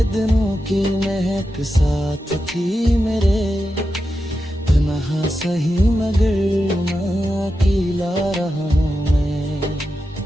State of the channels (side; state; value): both; normal; correlation 0.89